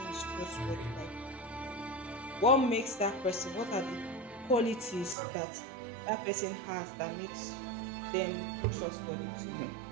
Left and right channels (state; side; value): drops out; left; at 5.2 s